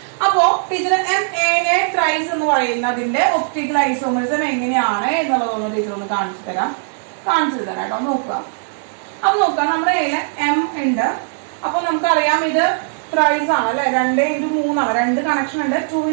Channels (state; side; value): silent; left; digital silence